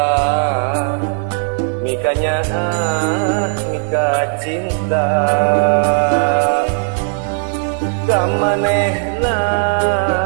mikanya mika cinta kamanehna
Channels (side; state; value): left; silent; digital silence